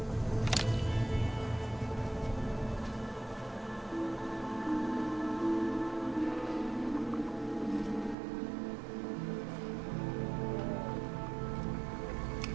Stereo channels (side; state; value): left; drops out; at 8.2 s